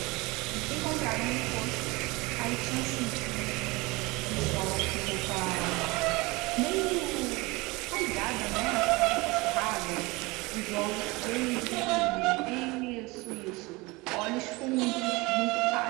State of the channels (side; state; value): left; quieter; 23.8 dB